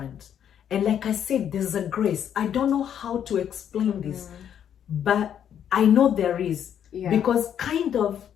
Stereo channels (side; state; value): right; quieter; 9.2 dB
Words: And like I said, there's a grace. I don't know how to explain this, but I know there is. Yeah. Because